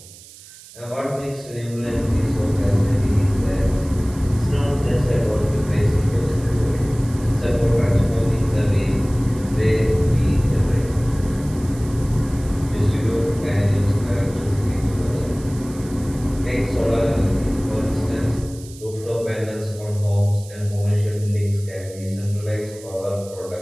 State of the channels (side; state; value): right; noise; hiss, 20 dB below the sound